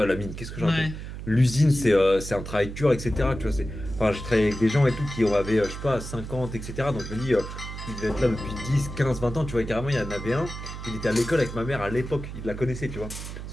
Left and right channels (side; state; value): right; noise; hum, 9 dB below the sound